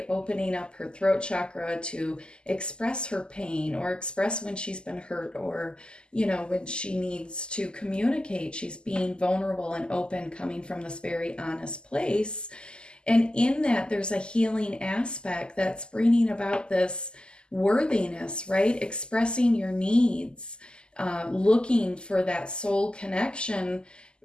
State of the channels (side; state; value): right; late; 0.048 ms